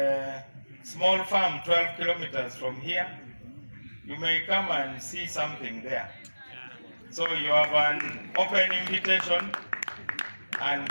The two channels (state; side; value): inverted; both; correlation -1.00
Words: small farm 12 kilometers from here. You may come and see something there. So you have an open invitation. And